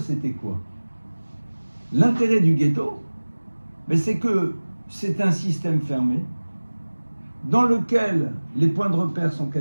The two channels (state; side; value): inverted; both; correlation -1.00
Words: quoi? L'intérêt du ghetto, c'est que c'est un système fermé dans lequel les points de repère sont